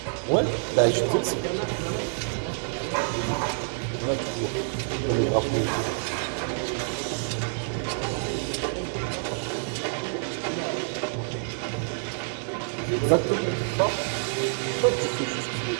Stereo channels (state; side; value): silent; left; 60 dB below the other